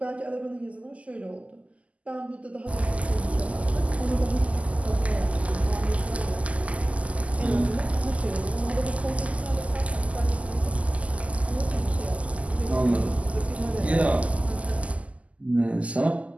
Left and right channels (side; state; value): left; late; 0.067 ms